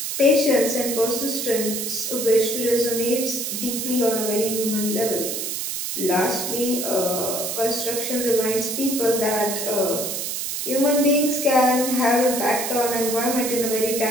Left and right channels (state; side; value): noise; right; hiss, 3 dB below the sound